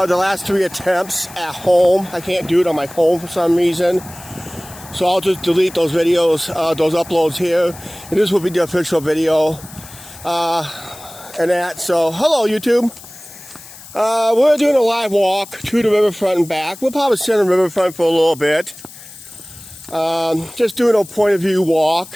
last 3 attempts at home. I can't do it on my phone for some reason, so I'll just delete those videos, those uploads here, and this will be the official video. And that. So, hello YouTube. We're doing a live walk to the riverfront and back. We'll probably sit on the riverfront for a little bit. Just doing a point of view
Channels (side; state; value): left; noise; hiss, 18 dB below the sound